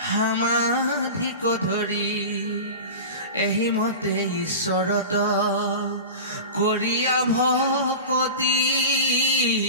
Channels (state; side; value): inverted; both; correlation -0.31